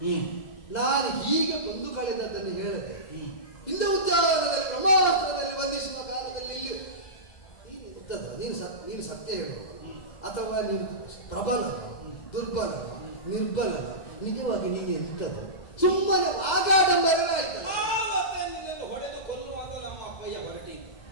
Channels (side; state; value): right; late; 2.0 ms